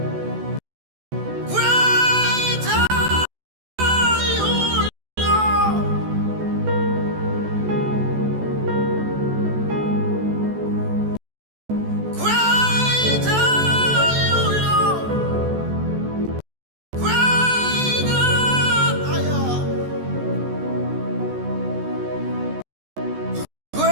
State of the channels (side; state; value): left; late; 14 ms